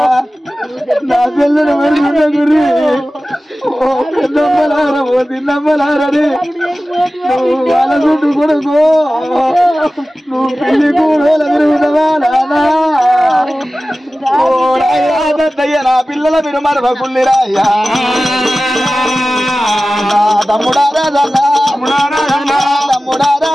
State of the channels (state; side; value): normal; both; correlation 0.96